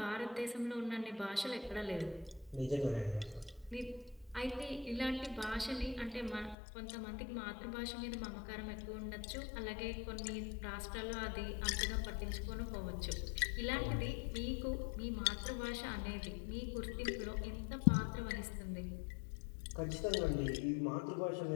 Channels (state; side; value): drops out; right; at 6.6 s